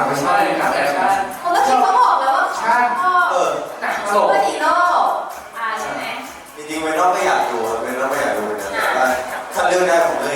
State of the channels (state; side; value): identical; both; correlation 1.00